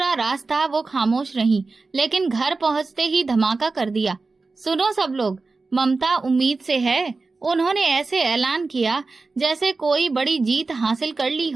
रास्ता वो खामोश रहीं, लेकिन घर पहुंचते ही धमाका कर दिया। सुनो सब लोग, ममता उम्मीद से है। उन्होंने ऐसे ऐलान किया जैसे कोई बड़ी जीत हासिल कर ली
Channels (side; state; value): left; quieter; 3.9 dB